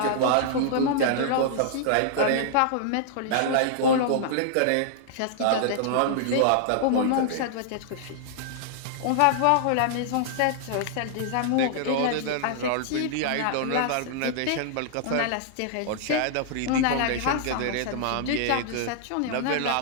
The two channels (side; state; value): both; different; correlation -0.01